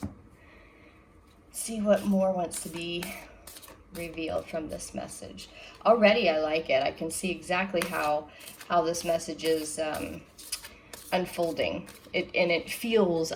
See what more wants to be revealed from this message. Already I like it. I can see exactly how this message is unfolding. I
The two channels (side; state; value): both; identical; correlation 1.00